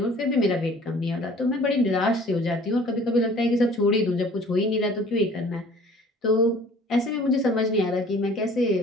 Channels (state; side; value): normal; both; correlation 0.51